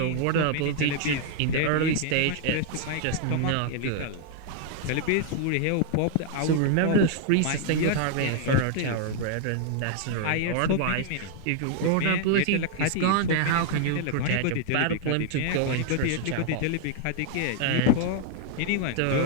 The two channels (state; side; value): different; both; correlation 0.00